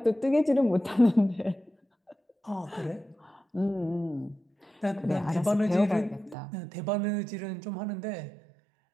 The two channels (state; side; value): drops out; left; at 6.4 s